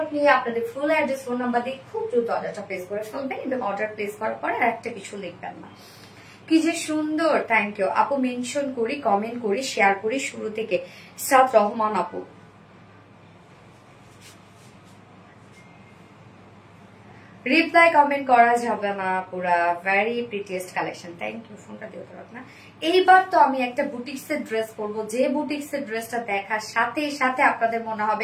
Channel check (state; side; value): identical; both; correlation 1.00